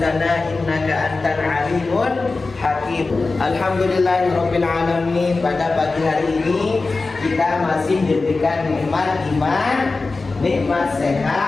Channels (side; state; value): right; quieter; 3.7 dB